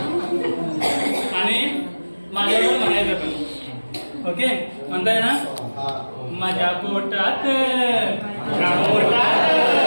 आणि माझ्यावर म्हणायचं पण. ओके, म्हणताय ना? माझ्या पोटात माझ्या पोटात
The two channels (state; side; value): inverted; both; correlation -1.00